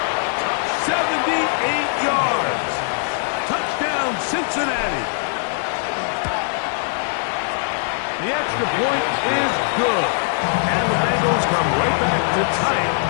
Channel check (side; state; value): right; silent; digital silence